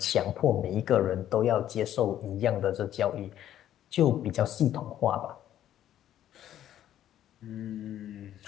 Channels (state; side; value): quieter; right; 11.7 dB